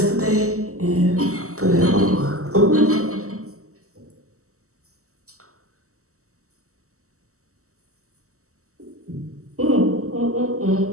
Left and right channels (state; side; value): late; left; 0.64 ms